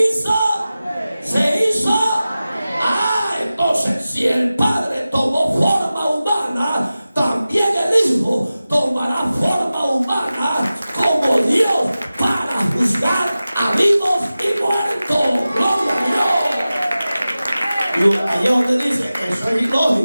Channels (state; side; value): inverted; both; correlation -0.95